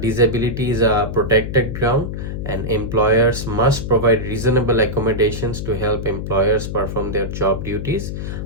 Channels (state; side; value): noise; left; hum, 5 dB below the sound